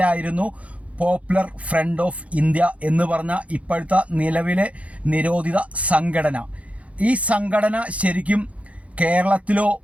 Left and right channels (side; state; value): left; late; 0.065 ms